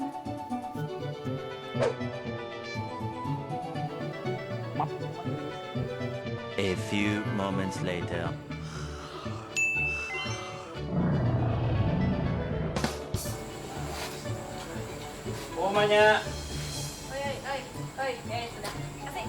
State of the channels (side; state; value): both; identical; correlation 1.00